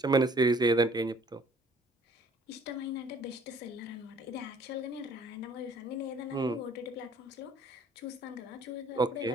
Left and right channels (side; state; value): both; normal; correlation 0.56